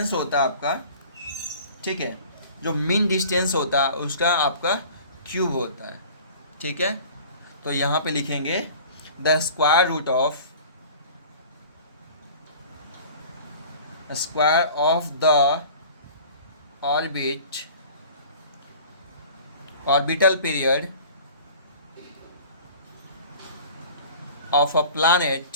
होता है आपका, ठीक है, जो मीन डिस्टेंस होता है उसका आपका क्यूब होता है। ठीक है, तो यहाँ पे लिखेंगे the square of the orbital period of a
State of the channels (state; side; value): inverted; both; correlation -0.44